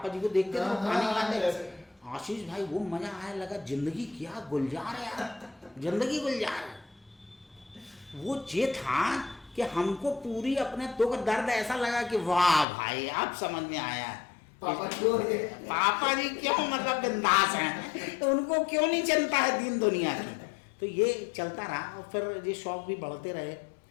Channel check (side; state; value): right; drops out; at 12.7 s